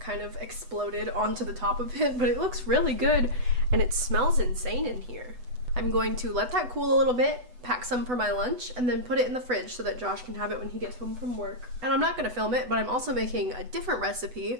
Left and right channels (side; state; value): left; late; 8.0 ms